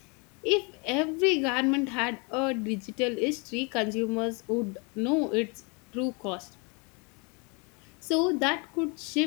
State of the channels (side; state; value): right; quieter; 31.9 dB